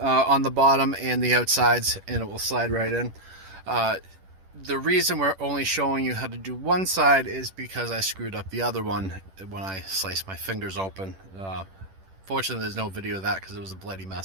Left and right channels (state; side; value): late; left; 10 ms